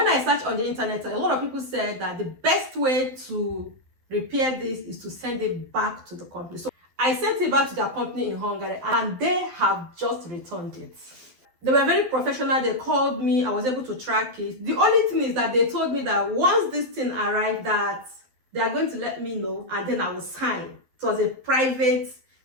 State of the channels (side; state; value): left; late; 12 ms